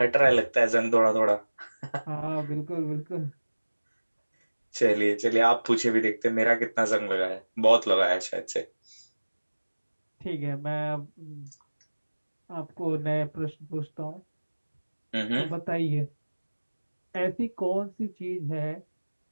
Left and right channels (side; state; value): both; inverted; correlation -1.00